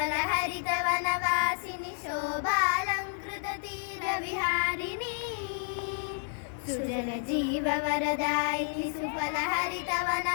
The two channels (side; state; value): right; silent; 57 dB below the other